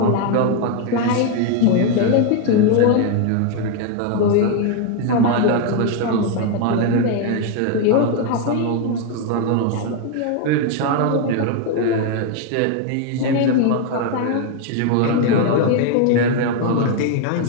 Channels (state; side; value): different; both; correlation 0.01